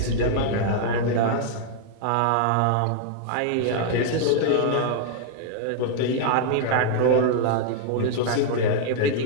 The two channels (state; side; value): different; both; correlation -0.01